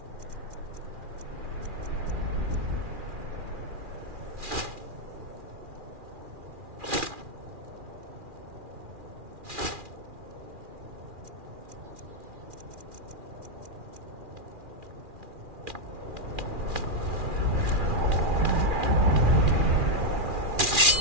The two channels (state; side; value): late; left; 2.4 ms